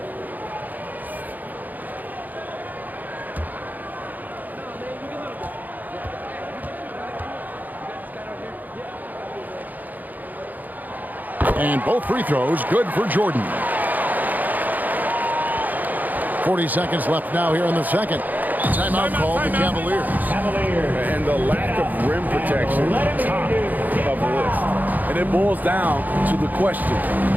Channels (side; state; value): left; late; 0.083 ms